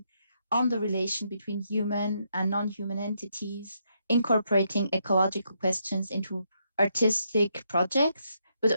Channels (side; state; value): both; inverted; correlation -0.78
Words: on the relation between human and non-human entities, incorporating ecological questions into artistic projects, but